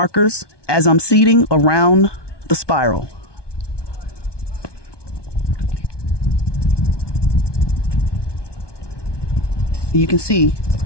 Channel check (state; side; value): late; right; 1.2 ms